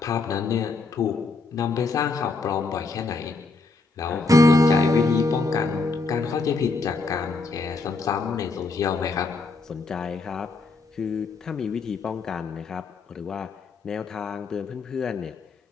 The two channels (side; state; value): right; quieter; 3.7 dB